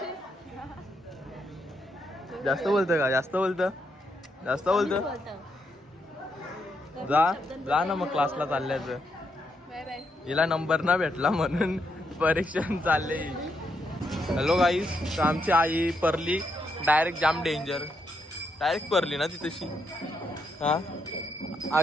जास्त बोलतं का जास्त बोलतं जा ना मग क्लासला चालल्याचं हिला नंबर ना भेटला म्हणून परीक्षण चालले हॅलो गाईस तर आमची आई परली डायरेक्ट जाम डेंजर डायरेक्ट परली ना ती तशी हा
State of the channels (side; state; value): both; normal; correlation 0.79